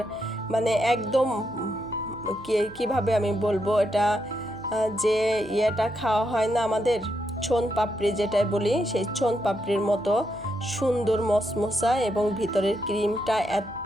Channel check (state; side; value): noise; right; hum, 21 dB below the sound